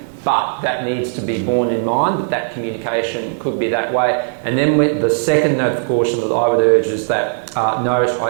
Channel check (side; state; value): left; silent; digital silence